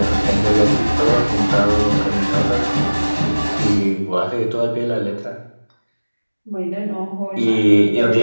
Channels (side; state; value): both; inverted; correlation -1.00